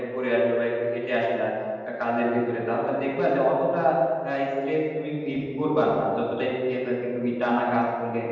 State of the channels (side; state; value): both; identical; correlation 1.00